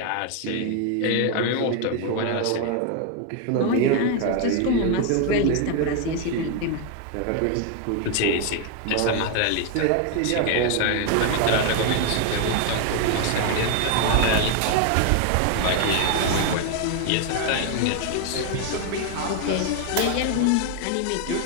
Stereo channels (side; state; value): both; different; correlation 0.01